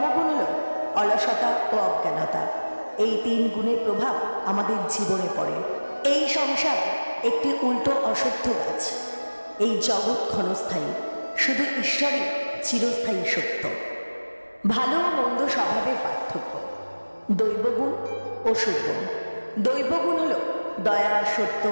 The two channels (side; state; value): both; inverted; correlation -1.00